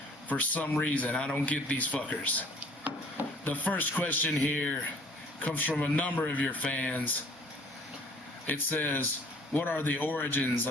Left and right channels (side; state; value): both; normal; correlation 0.54